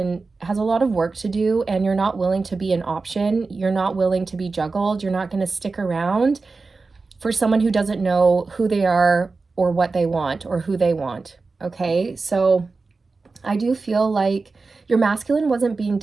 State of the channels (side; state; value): left; quieter; 4.0 dB